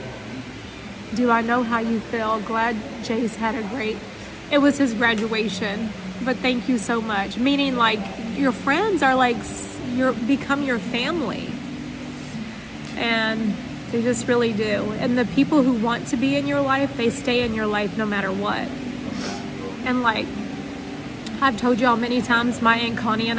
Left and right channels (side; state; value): both; identical; correlation 1.00